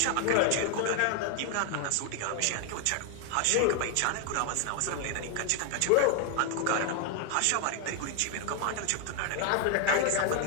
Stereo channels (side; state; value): both; different; correlation 0.00